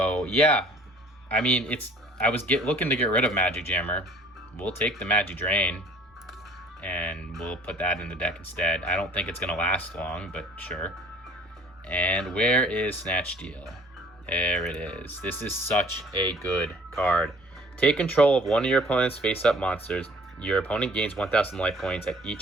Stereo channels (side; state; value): both; normal; correlation 0.53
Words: yeah. I mean, I was looking to get rid of Magic Jammer. We'll take the Magic Drain, and we'll put that in the deck instead. I don't think it's going to last long, but sure. And where is Snatch Steal? There it is. This is such a good card. Take control of one of your opponent's face-up monsters. Your opponent gains 1,000 life points at